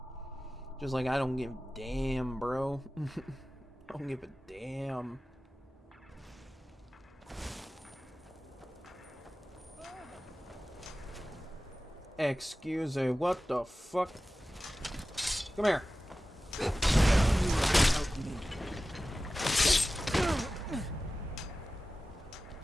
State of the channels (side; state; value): both; normal; correlation 0.96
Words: Just like, I don't give a damn, bro. I don't give a damn. Excuse me, what the fuck? Come here.